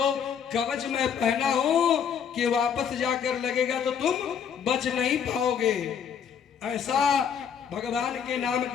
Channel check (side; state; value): right; quieter; 7.7 dB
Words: कवच मैं पहना हूं कि वापस जाकर लगेगा तो तुम बच नहीं पाओगे। ऐसा भगवान के नाम